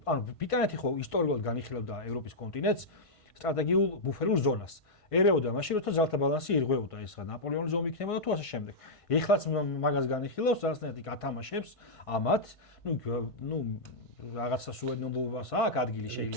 ანუ ბრიტანეთი ხო ისტორიულად განიხილავდა ევროპის კონტინენტს სტრატეგიულ ბუფერულ ზონას. ერეოდა მაშინ როცა ძალთა ბალანსი ირღვეოდა, ეს რა ნაპოლეონის ომი იქნებოდა თუ ასე შემდეგ. ეხლაც მაგას განიხილავს, რაღაცნაირად გათამაშებს ამათ, ნუ რაღაცა სუვერენობას აქვს ადგილი შეიძლება.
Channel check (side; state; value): right; late; 1.5 ms